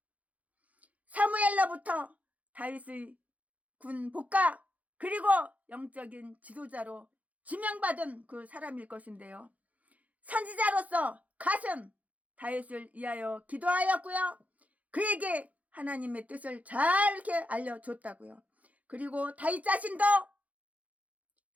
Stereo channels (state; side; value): late; left; 0.071 ms